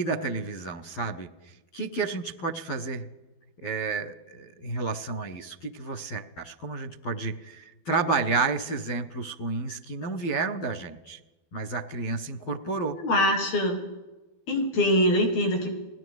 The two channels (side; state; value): right; late; 12 ms